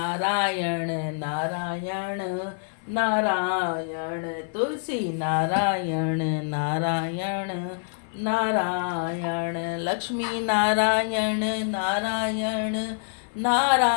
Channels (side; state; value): right; silent; 61 dB below the other